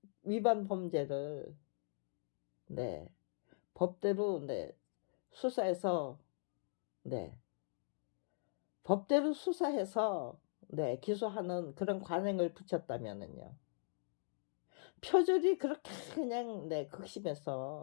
위반 범죄를 네. 법대로 네. 수사해서 네. 법대로 수사해서 네. 기소하는 그런 관행을 붙였다면은요. 표절이 그렇게 그냥 네,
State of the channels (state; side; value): silent; right; digital silence